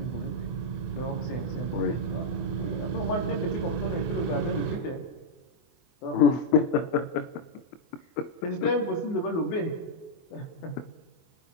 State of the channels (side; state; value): right; late; 24 ms